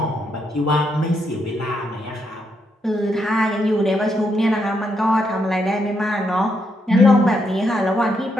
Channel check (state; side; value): normal; both; correlation 0.79